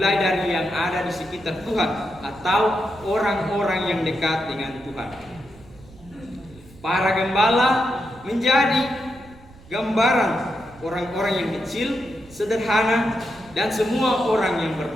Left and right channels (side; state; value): right; noise; rumble, 22 dB below the sound